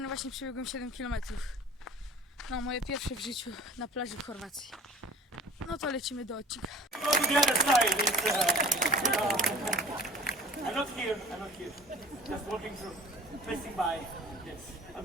właśnie przebiegłem 7 km. No, moje pierwsze w życiu na plaży w Chorwacji. No to lecimy do odcinka. Go to the other side. I'm not here. Just walking through, passing by. Yes, I'll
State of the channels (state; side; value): normal; both; correlation 0.43